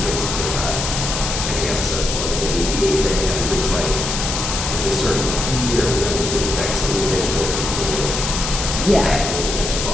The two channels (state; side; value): noise; left; hiss, 3 dB below the sound